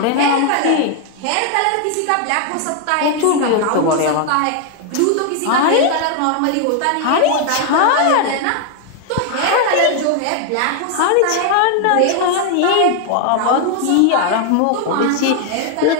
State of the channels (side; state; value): both; different; correlation 0.00